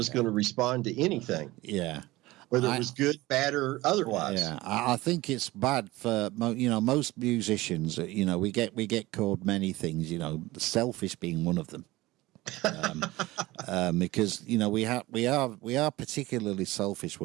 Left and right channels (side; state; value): left; quieter; 19.2 dB